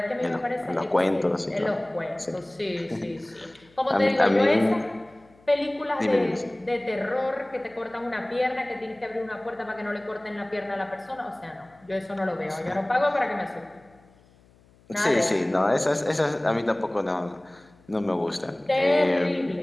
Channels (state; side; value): noise; left; hum, 29 dB below the sound